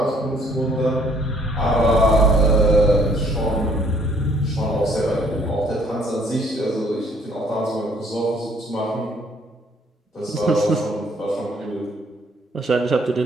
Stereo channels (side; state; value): both; normal; correlation 0.63